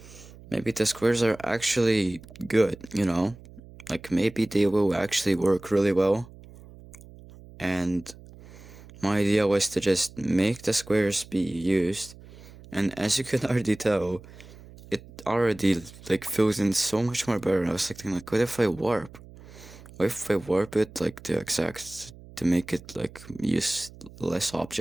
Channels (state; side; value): noise; right; hum, 19 dB below the sound